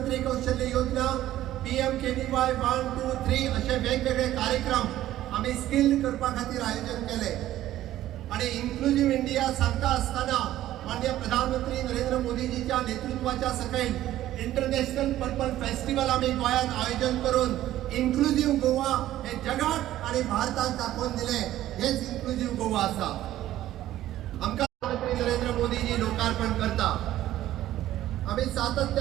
कौशल्य योजना, PMKVY 1, 2, 3 असे वेगवेगळे कार्यक्रम आम्ही स्किल्ड करपा खातीर आयोजन केले. आणि इन्क्लुझिव्ह इंडिया सांगता असताना माननीय प्रधानमंत्री नरेंद्र मोदीजीच्या नेतृत्वाच्या सकयल इंटरनॅशनल पर्पल फेस्टिवल आम्ही गोंयांत आयोजन करून इन्क्लुझिव्ह गोवा हे जगात आणि भारताक दाखोवन दिले. हेच इन्क्लुझिव्ह गोवा आसा. आमकां प्रधानमंत्री नरेंद्र मोदीजी लोकार्पण करता. आम्ही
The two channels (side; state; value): left; quieter; 13.7 dB